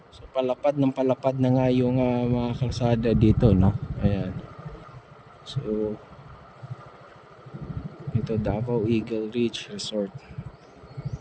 So palapad na nga yung mga kalsada dito, no. Ayan. So ito, Davao Eagle Ridge Resort.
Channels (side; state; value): both; identical; correlation 1.00